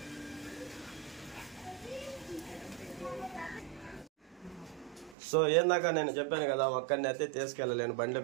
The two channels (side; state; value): left; drops out; at 5.2 s